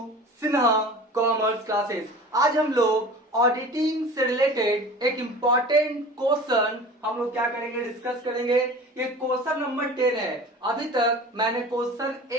Sinha commerce classes. आज हम लोग ऑडिटिंग से रिलेटेड एक इम्पॉर्टेंट क्वेश्चन हम लोग क्या करेंगे, डिस्कस करेंगे। ये क्वेश्चन नंबर 10 है। अभी तक मैंने क्वेश्चन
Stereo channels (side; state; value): both; normal; correlation 0.39